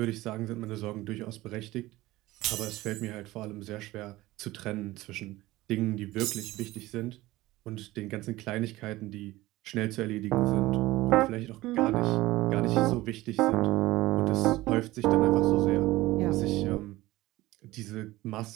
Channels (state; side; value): quieter; left; 18.1 dB